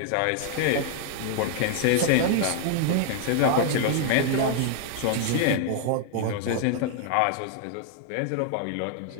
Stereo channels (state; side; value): different; both; correlation 0.00